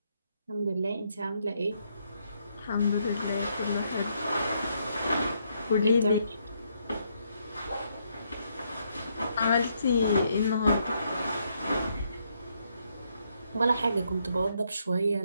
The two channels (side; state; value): both; inverted; correlation -0.75